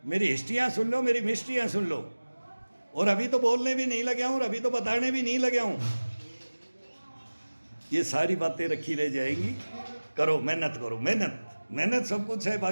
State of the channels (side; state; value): both; inverted; correlation -1.00